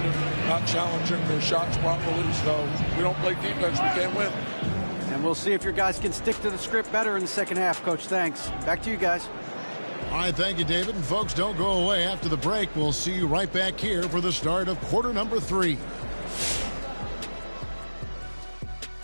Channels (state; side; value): inverted; both; correlation -1.00